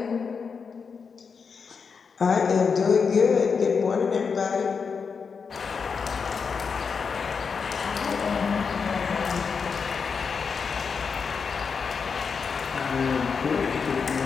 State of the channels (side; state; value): right; quieter; 5.7 dB